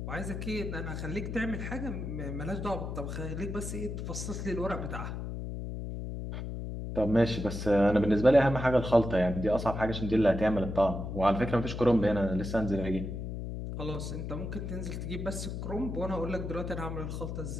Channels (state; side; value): noise; left; hum, 5 dB below the sound